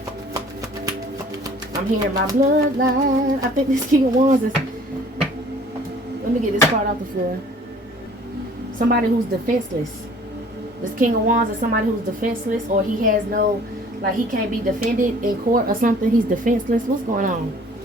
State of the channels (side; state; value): both; normal; correlation 0.52